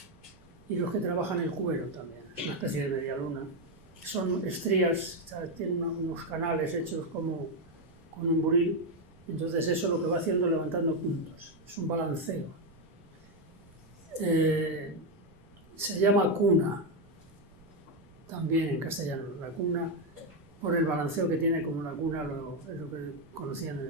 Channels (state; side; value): noise; right; rumble, 26 dB below the sound